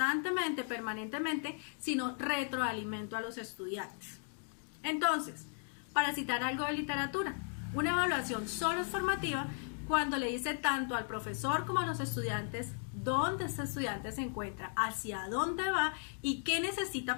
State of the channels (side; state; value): right; silent; 54 dB below the other